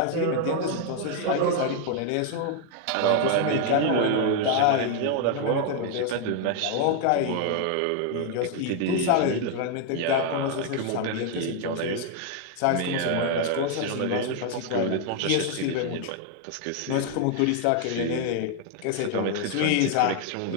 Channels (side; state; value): both; different; correlation 0.00